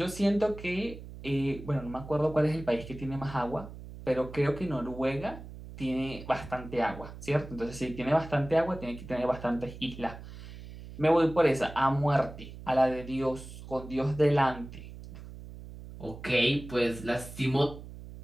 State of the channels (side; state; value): right; noise; hum, 14 dB below the sound